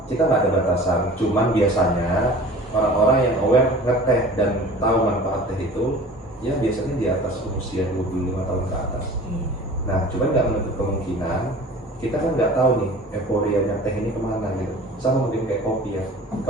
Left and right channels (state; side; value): normal; both; correlation 0.42